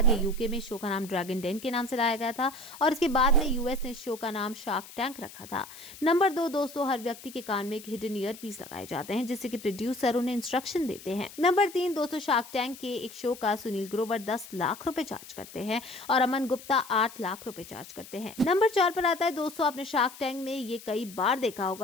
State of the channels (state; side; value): noise; left; hiss, 17 dB below the sound